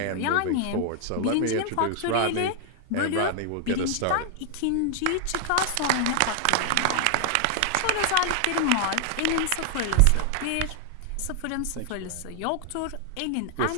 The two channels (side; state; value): both; different; correlation 0.00